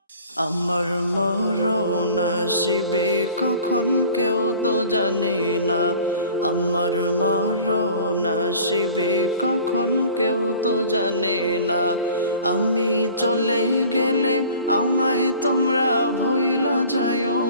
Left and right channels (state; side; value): inverted; both; correlation -0.46